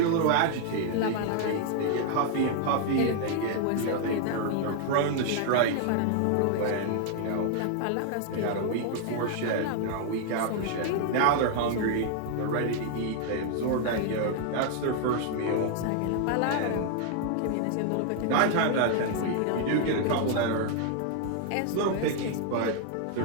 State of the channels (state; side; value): different; both; correlation 0.00